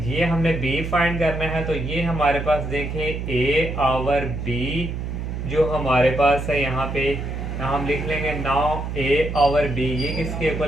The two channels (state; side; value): noise; right; hum, 5 dB below the sound